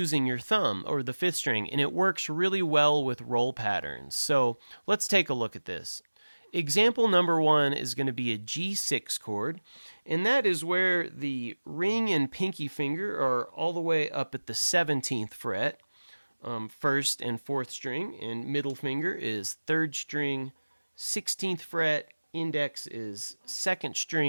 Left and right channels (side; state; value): both; inverted; correlation -1.00